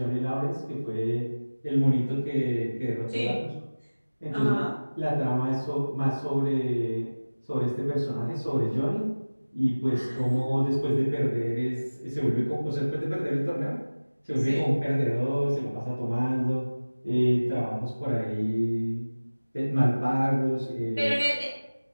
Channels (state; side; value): inverted; both; correlation -1.00